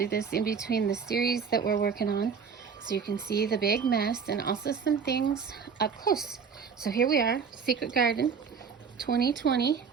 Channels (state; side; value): quieter; left; 6.2 dB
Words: this in between the series that we're working on so you can see the big mess and also some things up close. So here we are, Secret Garden 2020,